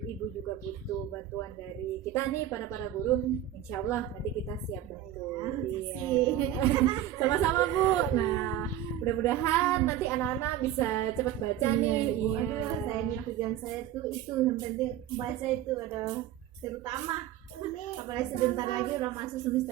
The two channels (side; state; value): left; quieter; 11.7 dB